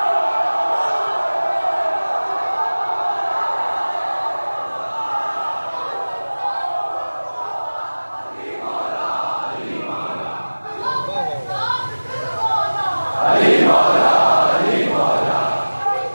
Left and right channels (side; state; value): both; inverted; correlation -1.00